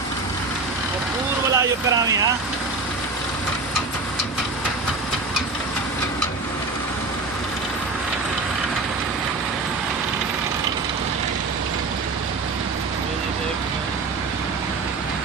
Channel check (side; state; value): left; quieter; 3.7 dB